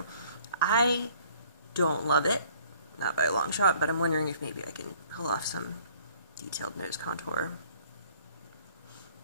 I don't love it, not by a long shot, but I'm wondering if maybe I can pull off some detailed nose contour.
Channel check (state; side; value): inverted; both; correlation -0.58